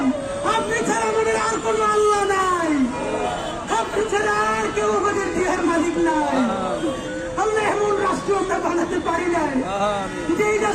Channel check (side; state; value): both; identical; correlation 1.00